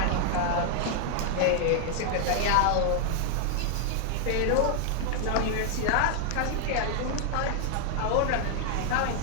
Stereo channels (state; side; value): different; both; correlation 0.00